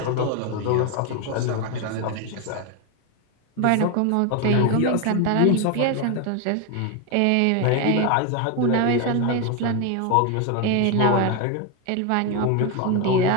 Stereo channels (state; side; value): different; both; correlation 0.01